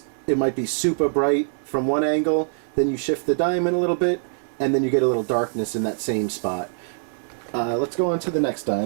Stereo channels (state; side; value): silent; left; 63 dB below the other